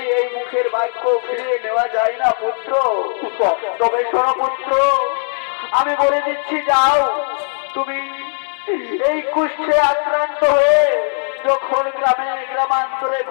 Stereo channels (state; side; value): silent; right; digital silence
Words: এই মুখের বাক্য ফিরিয়ে নেওয়া যায় না পুত্র। তবে শোনো পুত্র, আমি বলে দিচ্ছি, যাও তুমি এই কুষ্ঠে আক্রান্ত হয়ে যখন গ্রামান্তরে